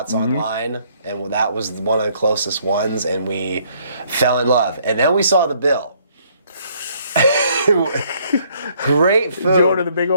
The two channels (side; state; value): both; inverted; correlation -0.65